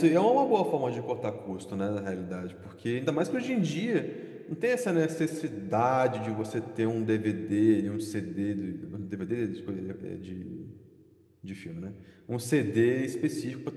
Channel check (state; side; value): identical; both; correlation 1.00